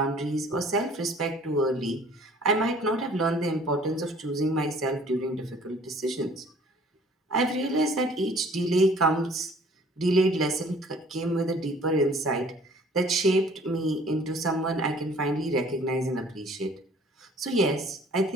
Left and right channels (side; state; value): both; normal; correlation 0.54